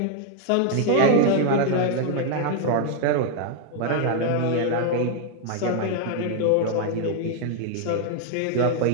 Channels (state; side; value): different; both; correlation 0.00